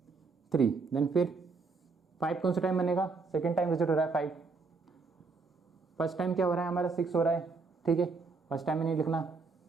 3। देन फिर 5 कौन सा टाइम बनेगा? 2nd टाइम विजिट हो रहा है 5। फर्स्ट टाइम क्या हो रहा है हमारा? 6 हो रहा है। ठीक है, फर्स्ट टाइम में नहीं लिखना,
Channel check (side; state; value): left; quieter; 4.3 dB